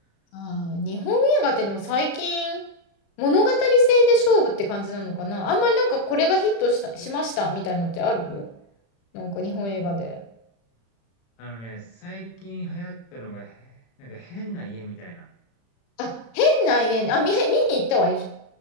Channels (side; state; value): right; late; 35 ms